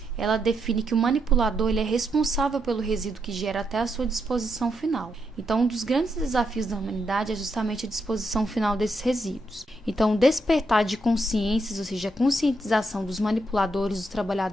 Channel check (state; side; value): normal; both; correlation 0.80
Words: ela define que o manipulador ele é responsável pelo resíduo que gera até a sua disposição final. Então, um dos grandes desafios da humanidade é justamente a disposição final desses resíduos. Então, o despertar de consciências, ou seja, a conscientização dos manipuladores, dos